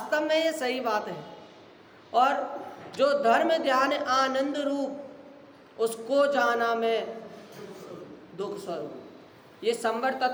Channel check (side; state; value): both; identical; correlation 1.00